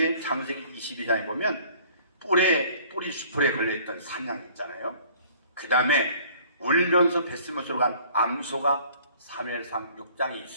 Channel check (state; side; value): inverted; both; correlation -0.53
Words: 창세기 22장에 보면 뿌리 수풀에 걸려있던 산양 있잖아요. 그 다음에 울면서 뱃속으로 간 암소가 사무엘상 6장에